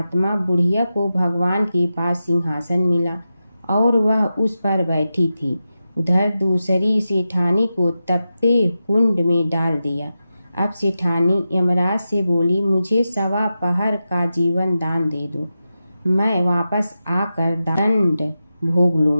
बुढ़िया को भगवान के पास सिंहासन मिला और वह उस पर बैठी थी। उधर दूसरी सेठानी को तपते कुंड में डाल दिया। अब सेठानी यमराज से बोली, मुझे 1.25 पहर का जीवन दान दे दो, मैं वापस आकर दंड भोग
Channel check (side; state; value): both; inverted; correlation -0.91